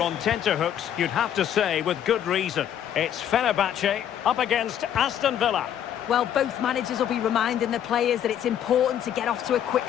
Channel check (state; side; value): quieter; right; 10.0 dB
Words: on tenterhooks, you'd have to say with good reason. It's Fenerbahce up against Aston Villa. Well, both managers will be reminding the players that it's important to get off to a quick